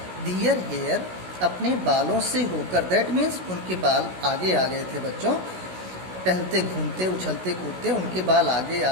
दियर हेयर अपने बालों से होकर। दैट मीन्स उनके बाल आगे आ गए थे बच्चों, टहलते घूमते उछलते कूदते उनके बाल आगे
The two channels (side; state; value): left; late; 16 ms